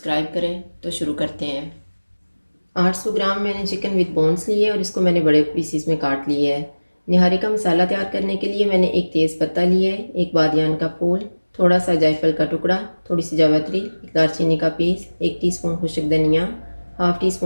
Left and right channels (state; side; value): inverted; both; correlation -1.00